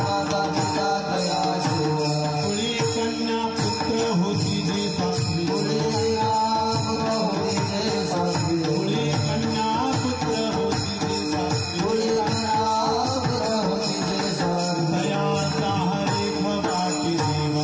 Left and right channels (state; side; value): identical; both; correlation 1.00